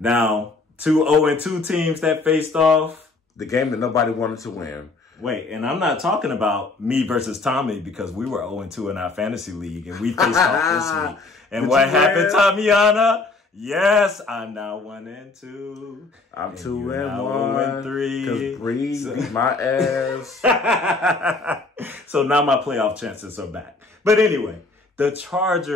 Now, 2 0-2 teams that faced off. The game that nobody wanted to win. Wait, and I'm not talking about me versus Tommy because we were 0-2 in our fantasy league and we faced off this week. And what happened, Tamiana? Yes, I'm now 1-2. I'm 2-1. 3. Because Bree beat my ass. So now my playoff chances are back. But anyway, the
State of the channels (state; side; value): quieter; right; 3.6 dB